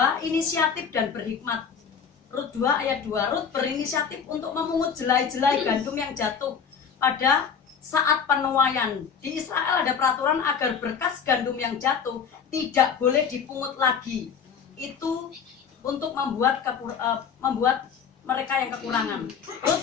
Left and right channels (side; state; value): right; quieter; 6.8 dB